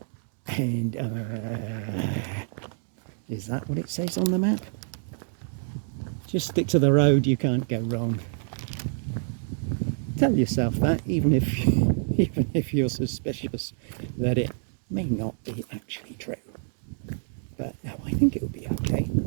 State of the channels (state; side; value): silent; left; digital silence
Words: and is that what it says on the map? Just stick to the road, you can't go wrong. Tell yourself that, even if you're suspicious that it may not be actually true. But no, I think it will be okay.